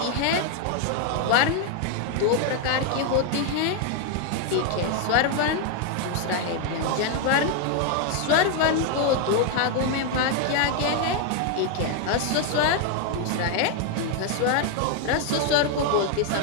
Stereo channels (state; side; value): different; both; correlation 0.01